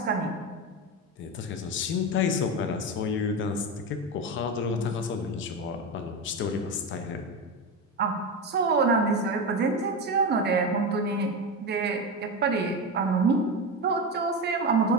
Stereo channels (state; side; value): normal; both; correlation 0.18